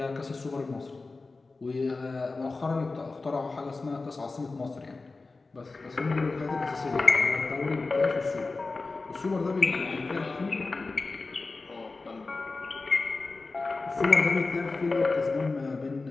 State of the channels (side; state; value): right; quieter; 3.7 dB